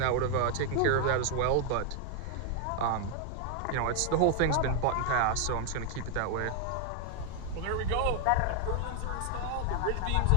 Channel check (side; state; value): both; different; correlation 0.00